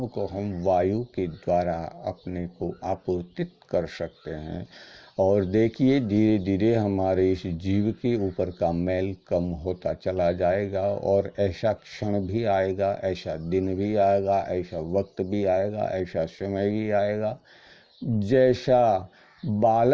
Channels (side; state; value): both; identical; correlation 1.00